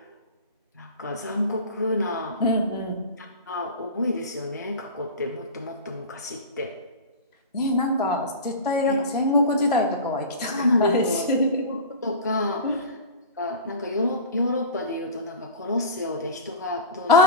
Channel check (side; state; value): both; inverted; correlation -0.30